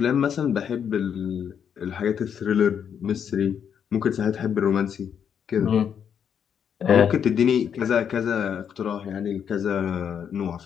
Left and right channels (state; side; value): quieter; right; 8.0 dB